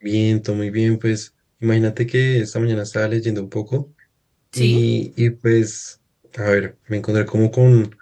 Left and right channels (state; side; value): identical; both; correlation 1.00